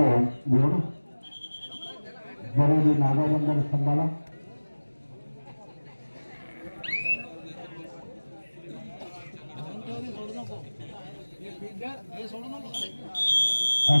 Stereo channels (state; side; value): inverted; both; correlation -1.00